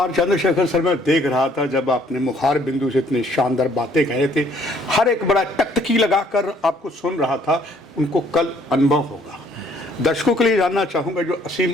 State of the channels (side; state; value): both; normal; correlation 0.63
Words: चंद्रशेखर सर, मैं देख रहा था जब आपने मुखार बिंदु से इतनी शानदार बातें कहे थे, हर एक बड़ा टकटकी लगाकर आपको सुन रहा था। उनको कल अनुभव होगा। दर्शकों के लिए जानना चाहूँगा, जो असीम